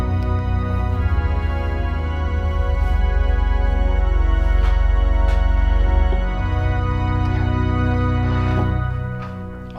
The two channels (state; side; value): identical; both; correlation 1.00